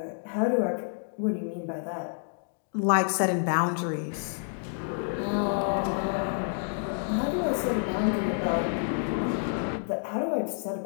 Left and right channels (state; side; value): silent; right; digital silence